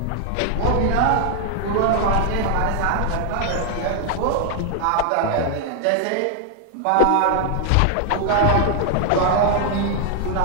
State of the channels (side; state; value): both; different; correlation 0.00